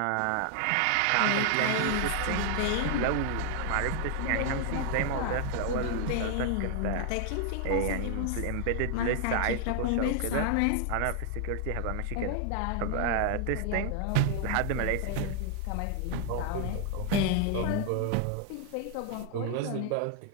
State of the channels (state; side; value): different; both; correlation 0.00